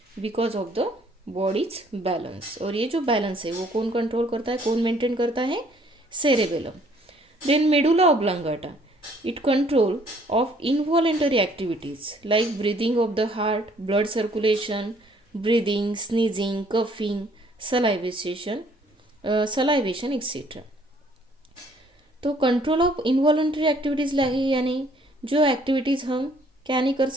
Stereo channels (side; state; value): both; normal; correlation 0.62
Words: because of the body's balance. और ये जो बैलेंस है वो कौन कंट्रोल करता है, कौन मेंटेन करता है, cerebellum. Then medulla oblongata, it control of involuntary activities like breathing of the heart, blood circulation, breathing, sneezing, coughing, salivation etc. तो कंट्रोल ऑफ इनवॉलंटरी एक्टिविटीज़ यानी जो एक्टिविटीज़ हम क्या नहीं कर